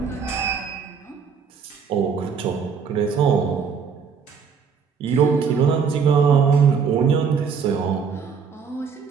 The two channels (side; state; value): left; quieter; 6.2 dB